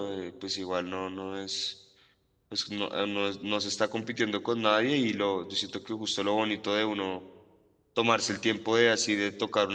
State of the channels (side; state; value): both; identical; correlation 1.00